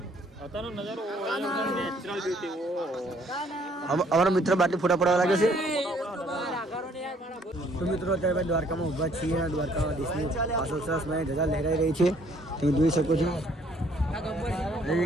અત્યારનો નજારો નેચરલ બ્યુટી. અમારા મિત્ર બાટલી ફોટા પડાવવા લાગે છે. તો મિત્રો અત્યારે દ્વારકામાં ઊભા છીએ અને દ્વારકામાં દેશની પાછળ સરસ મને ધજા લહેરાઈ રહી છે. તમે જોઈ શકો છો.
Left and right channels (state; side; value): normal; both; correlation 0.62